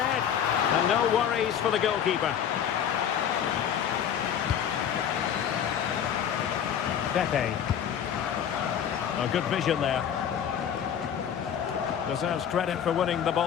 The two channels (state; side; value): quieter; right; 8.9 dB